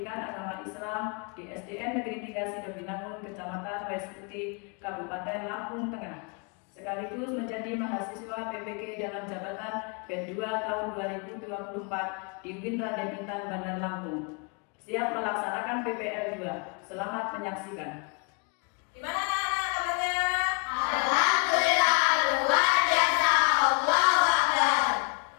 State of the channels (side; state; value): right; quieter; 34.0 dB